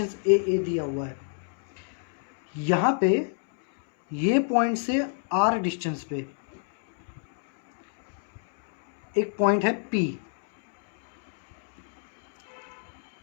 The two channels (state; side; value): silent; right; 60 dB below the other